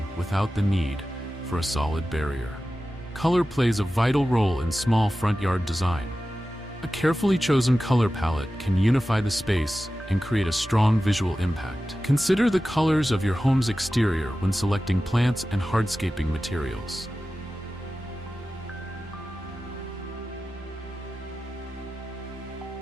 without the need for a solid barrier. Color plays a vital role in small front yard design. A carefully chosen color palette can unify the space and create a strong visual impact. Consider the colors of your home's exterior when selecting plants and hardscaping materials.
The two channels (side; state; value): both; normal; correlation 0.94